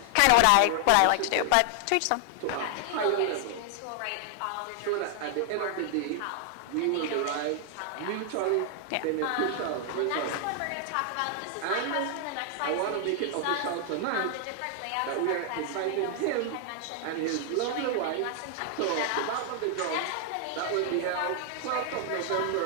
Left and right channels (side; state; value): both; different; correlation 0.00